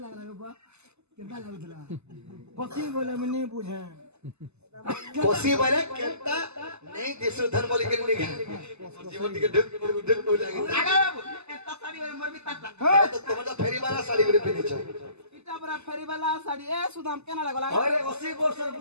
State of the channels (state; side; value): late; left; 0.80 ms